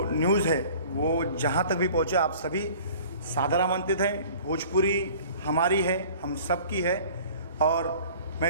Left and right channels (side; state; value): both; inverted; correlation -0.47